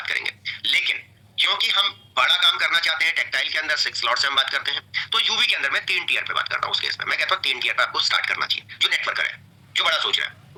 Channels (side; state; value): both; identical; correlation 1.00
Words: करेंगे। लेकिन क्योंकि हम बड़ा काम करना चाहते हैं, टेक्सटाइल के अंदर 6 स्लॉट से हम बात करते हैं, तो यूवी के अंदर मैं 3 टीयर पे बात करता हूं। उस केस में मैं कहता हूं 3 टीयर पे आपको स्टार्ट करना चाहिए। जो नेटवर्कर है, जो बड़ा सोच रहा है,